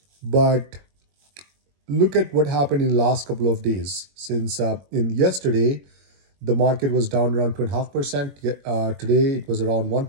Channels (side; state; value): left; late; 21 ms